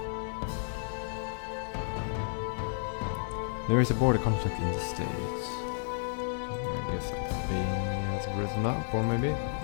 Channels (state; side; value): silent; right; digital silence